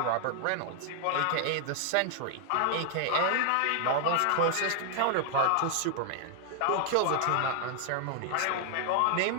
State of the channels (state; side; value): different; both; correlation 0.00